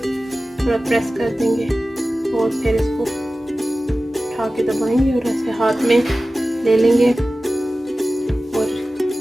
थोड़ा प्रेस कर देंगे और फिर इसको उठा के दबाएंगे और ऐसे हाथ में ले लेंगे और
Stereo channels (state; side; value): normal; both; correlation 0.96